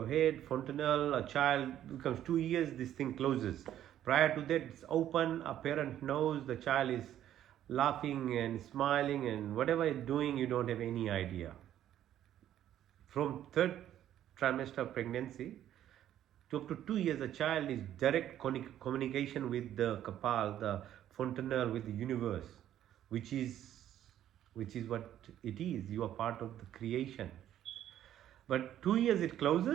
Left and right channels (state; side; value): quieter; left; 11.5 dB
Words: head. Fontanelle, a child becomes 2 years, this thing closes. Prior to that, it's open. A parent knows the child is laughing and smiling, and whatever it's doing, you don't have any idea. From third trimester of pregnancy to up to 2 years, a child is direct communication with the Kapal, the Fontanelle, with the universe, which is what it is. You are part of the creation. But 2 years it